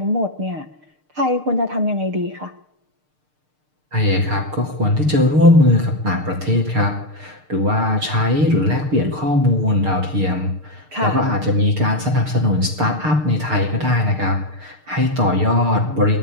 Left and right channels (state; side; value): late; left; 6.6 ms